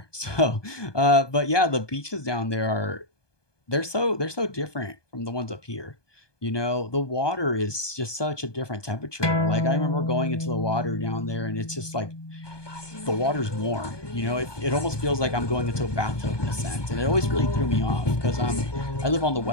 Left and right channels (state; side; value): late; right; 1.2 ms